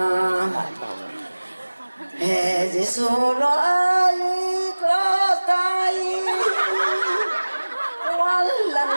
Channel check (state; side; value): inverted; both; correlation -1.00